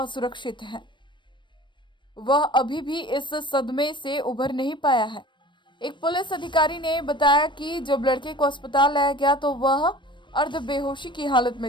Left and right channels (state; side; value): late; right; 0.23 ms